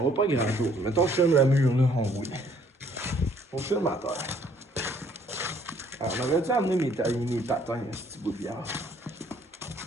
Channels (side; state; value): both; normal; correlation 0.62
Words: voit pas grand chose. Mettons que je filme le mur là, on voit. On filme à terre. Alors, on aurait dû amener mes patins, ce petit bout de bière.